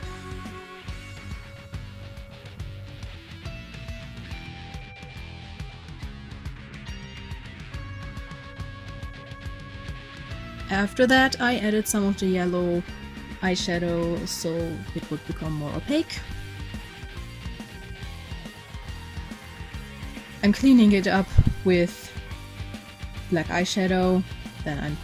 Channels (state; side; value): identical; both; correlation 1.00